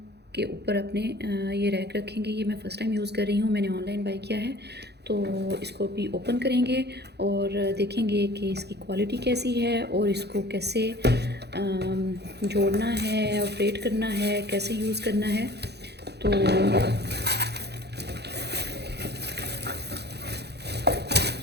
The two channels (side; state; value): left; late; 0.48 ms